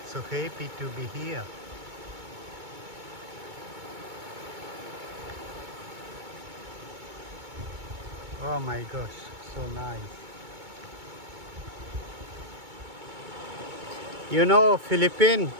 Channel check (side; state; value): left; late; 2.2 ms